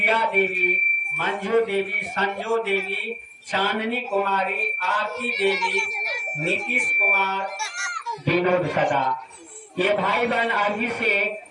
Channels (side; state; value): both; identical; correlation 1.00